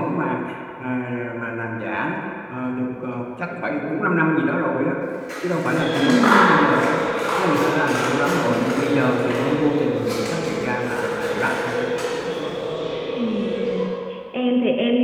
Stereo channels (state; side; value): identical; both; correlation 1.00